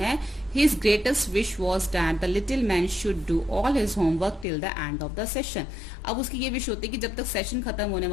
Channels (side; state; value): right; drops out; at 4.5 s